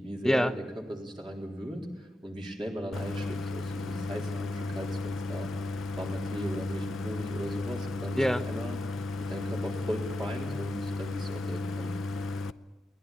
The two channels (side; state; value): both; normal; correlation 0.88